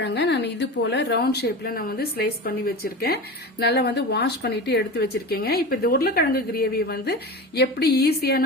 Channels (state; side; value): normal; both; correlation 0.29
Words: நான் இது போல ரவுண்ட் ஷேப்ல நான் ஸ்லைஸ் பண்ணி வச்சிருக்கேன். நல்லா வாஷ் பண்ணிட்டு எடுத்து வச்சிருக்கேங்க. இப்ப இந்த உருளைக்கிழங்கு கிரேவி எப்படி